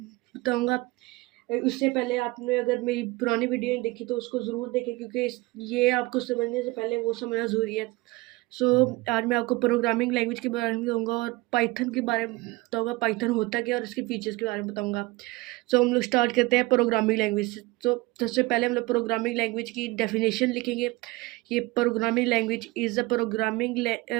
बताऊंगा। उससे पहले आपने अगर मेरी पुरानी वीडियो नहीं देखी तो उसको ज़रूर देखें, क्योंकि ये आपको समझने से पहले वो समझना ज़रूरी है। आज मैं आपको प्रोग्रामिंग लैंग्वेज के बारे में बताऊंगा और पाइथन के बारे में बताऊंगा, पाइथन होता क्या और इसके फीचर्स के बारे में बताऊंगा। हम लोग स्टार्ट करते हैं प्रोग्रामिंग लैंग्वेज से। तो सबसे पहले हम लोग प्रोग्रामिंग लैंग्वेज की डेफिनेशन लिखेंगे। ये programming language is a programming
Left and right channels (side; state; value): left; quieter; 22.1 dB